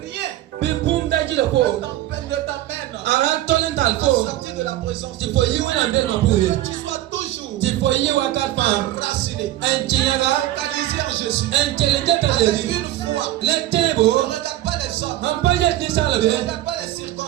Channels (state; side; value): quieter; left; 14.5 dB